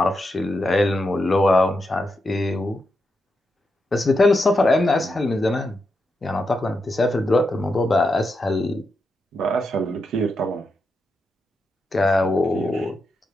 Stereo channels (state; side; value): normal; both; correlation 0.85